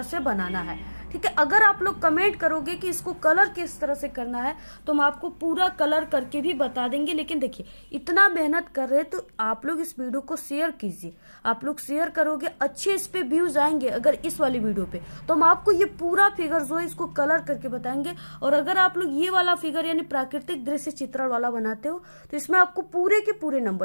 से बनाना है, ठीक है। अगर आप लोग कमेंट करोगे कि इसको कलर किस तरह से करना है तो हम आपको पूरा कलर करके भी बता देंगे। लेकिन देखिए, इतना मेहनत कर रहे हैं तो आप लोग इस वीडियो को शेयर कीजिए। आप लोग शेयर करोगे, अच्छे इस पे व्यूज आएंगे अगर इस वाली वीडियो पे, तो हम आपको ये पूरा फिगर जो है इसको कलर करके बताएंगे। और अगर आप लोग ये वाला फिगर यानी प्राकृतिक दृश्य चित्रण वाला बनाते हो तो इसमें आपको पूरे के पूरे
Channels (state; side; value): inverted; both; correlation -1.00